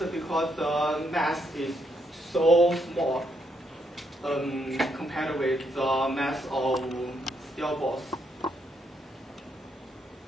because the mass is so small compared with the mass of steel balls.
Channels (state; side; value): normal; both; correlation 0.76